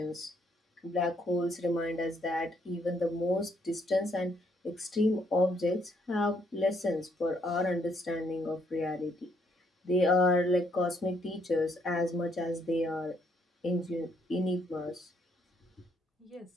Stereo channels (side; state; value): both; normal; correlation 0.71